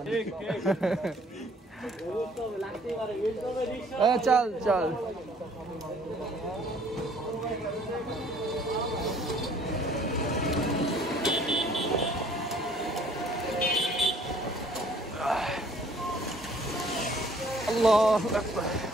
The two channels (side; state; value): both; normal; correlation 0.57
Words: চল চল। আল্লাহু আকবার।